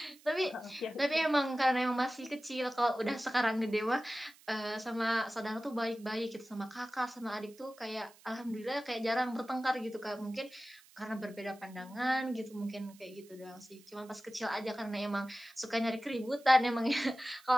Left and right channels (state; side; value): noise; right; hiss, 25 dB below the sound